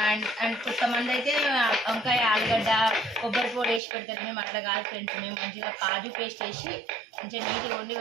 అండ్ కొంతమంది అయితే వంకాయ ఆలుగడ్డ కొబ్బరి పొడి వేసి పెడతారు. మేము అట్లా కాదు ఫ్రెండ్స్, మేము మంచిగా కాజు పేస్ట్ వేసి మంచిగా నీట్గా వండి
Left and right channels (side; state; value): left; drops out; at 3.8 s